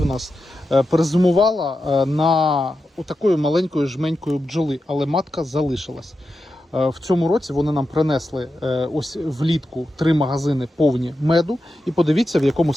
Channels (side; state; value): both; normal; correlation 0.89